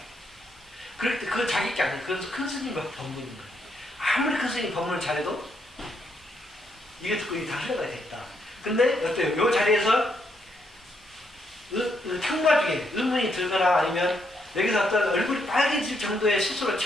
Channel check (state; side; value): normal; both; correlation 0.76